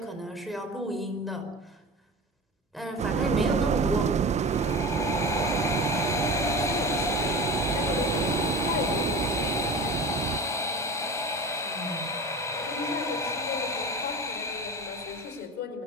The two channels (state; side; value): normal; both; correlation 0.32